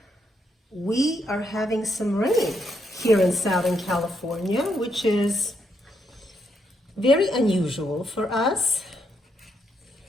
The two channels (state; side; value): normal; both; correlation 0.78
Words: We are having some rain here in Southern California, which is very unusual for us.